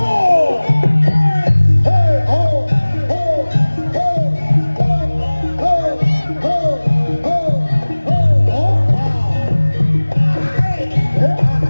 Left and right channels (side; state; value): both; inverted; correlation -1.00